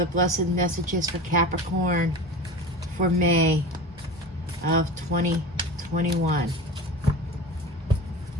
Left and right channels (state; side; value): normal; both; correlation 0.32